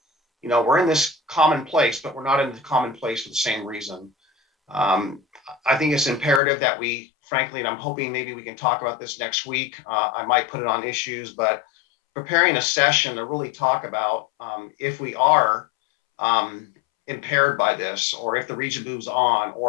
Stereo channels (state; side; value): drops out; right; at 6.4 s